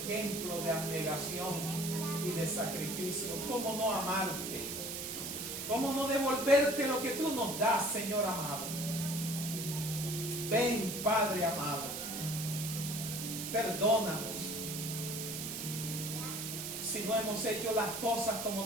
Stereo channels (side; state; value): right; noise; hiss, 5 dB below the sound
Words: de abnegación y de sacrificio. ¿Cómo no amarte? ¿Cómo no devolverte lo que tú nos das, Señor amado? Ven, Padre amado, perdónanos si no hemos hecho las cosas como